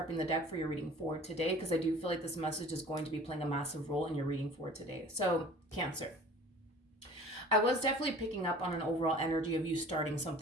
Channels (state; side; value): normal; both; correlation 0.45